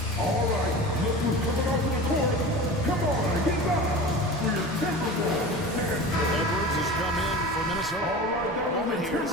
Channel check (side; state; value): both; normal; correlation 0.34